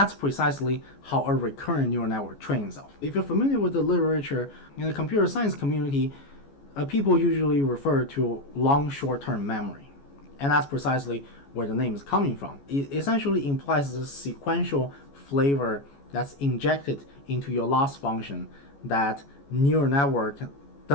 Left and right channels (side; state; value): right; late; 14 ms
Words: precisely how a recurrent neural network trains itself. If you're familiar with the literature in the computer science community, people usually refer to long short-term memory. And that's precisely where the name is coming from. It essentially implies a sequential flavor that's injected into your loss function that neural network